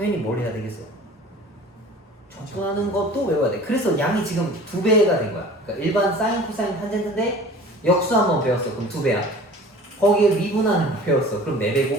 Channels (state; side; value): normal; both; correlation 0.43